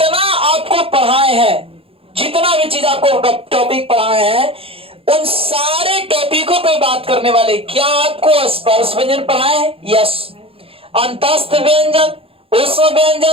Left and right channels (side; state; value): left; late; 0.27 ms